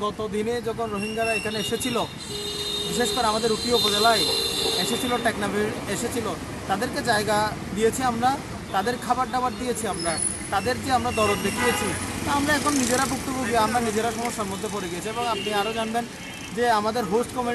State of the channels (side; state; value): both; identical; correlation 1.00